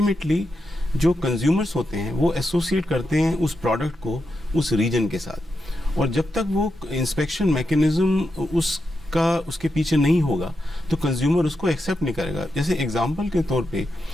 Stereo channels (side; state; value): both; normal; correlation 0.86